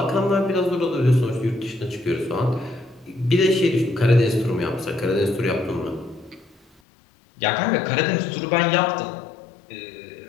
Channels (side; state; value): right; drops out; at 6.7 s